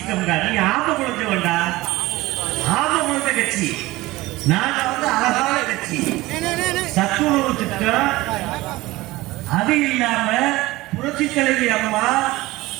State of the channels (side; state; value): left; quieter; 19.3 dB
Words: நீ ஆம குழந்தை வேண்டா, ஆம குழந்தை கட்சி. நாங்க வந்து அழகான கட்சி. சத்துணவு திட்டம், அது இல்லாம புரட்சி தலைவி அம்மா